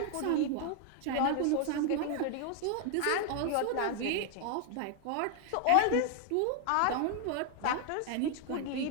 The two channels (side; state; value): both; different; correlation 0.00